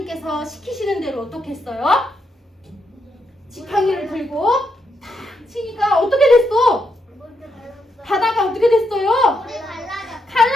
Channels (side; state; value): both; normal; correlation 0.80